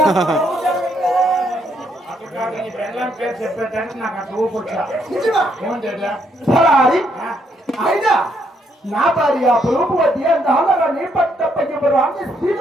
అక్కడ కాదు, నీ పెళ్ళాం పేరు చెప్పేదానికి నాకు అట్లా ఊపు వచ్చా. నిజమా? ఏమంటే సలారి అయినా నా భార్య ప్రభువతి అందాలని పట్టప్పగివ్వరు అని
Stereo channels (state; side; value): normal; both; correlation 0.73